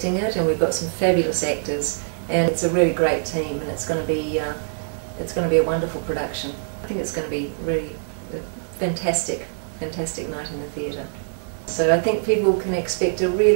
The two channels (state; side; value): silent; left; digital silence